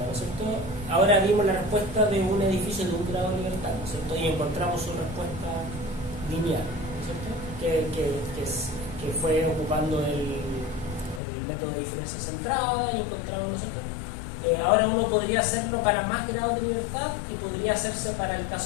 es cierto? Ahora vimos la respuesta de un edificio de un grado de libertad, ¿no es cierto? Y encontramos su respuesta lineal, ¿no es cierto? Que fue ocupando el método de diferencia centrada y encontramos, ¿no es cierto? Ahora uno podría hacerlo para más grados de libertad y podría hacerse para el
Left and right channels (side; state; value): right; drops out; at 11.2 s